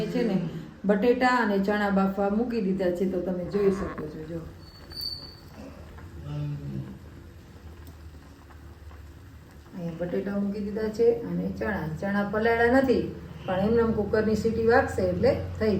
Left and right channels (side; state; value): both; identical; correlation 1.00